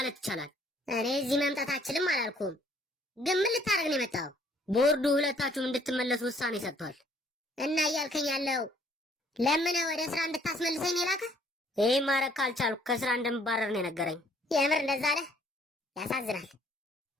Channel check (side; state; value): both; normal; correlation 0.62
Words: ይቻላል። እኔ እዚህ መምጣት አልችልም አላልኩም። ግን ምን ልታደርግ ነው የመጣው? ቦርዱ ሁለታችሁም እንድትመለሱ ውሳኔ ሰጥቷል። እና እያልከኝ ያለው ለምን ወደ ስራ እንድታስመልሰኝ ነው የላከህ? ይህ ማድረግ ካልቻልኩ ከስራ እንደምባረር ነው የነገረኝ። የምር እንደዛ አለ? ያሳዝናል።